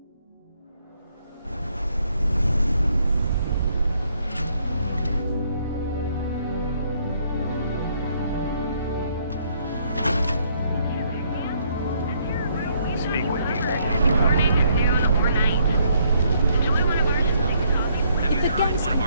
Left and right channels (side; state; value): both; inverted; correlation -0.69